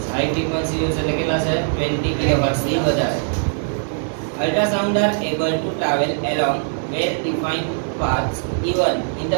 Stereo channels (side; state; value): left; silent; 65 dB below the other